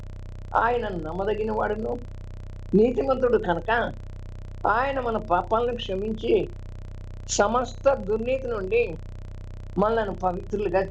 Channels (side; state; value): both; identical; correlation 1.00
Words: ఆయన నమ్మదగిన వాడును, నీతిమంతుడు కనుక ఆయన మన పాపాలను క్షమించి సమస్త దుర్నీతి నుండి మనలను పవిత్రులుగా